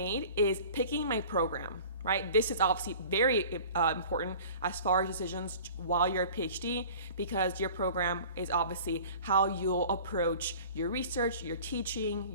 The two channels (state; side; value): inverted; both; correlation -0.43